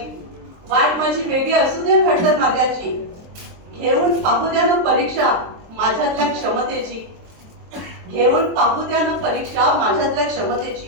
वाट माझी वेगळी असू द्या खडतर मार्गाची. घेऊन पाहू द्या ना परीक्षा माझ्यातल्या क्षमतेची, घेऊन पाहू द्या ना परीक्षा माझ्यातल्या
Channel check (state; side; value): late; left; 23 ms